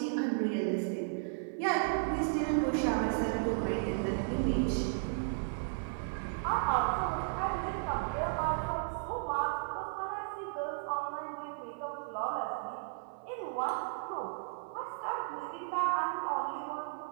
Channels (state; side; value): silent; left; 55 dB below the other